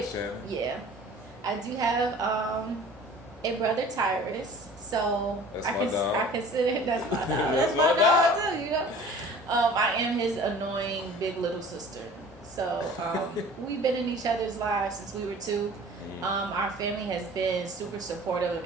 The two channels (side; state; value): both; normal; correlation 0.46